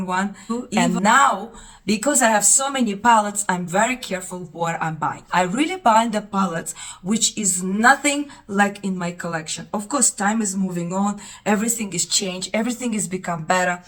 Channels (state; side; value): identical; both; correlation 1.00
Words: one. And now, because I have so many palettes, I'm very careful what I'm buying. I really buy the palettes which is nothing like in my collection. Of course, time is moving on, everything is changed, everything is become better.